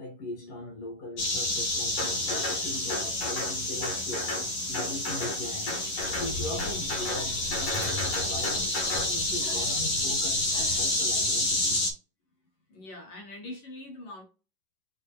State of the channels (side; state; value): right; late; 11 ms